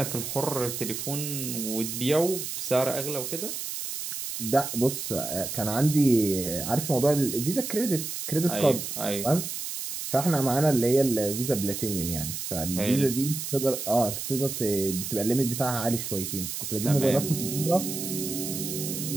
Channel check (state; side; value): noise; right; hiss, 5 dB below the sound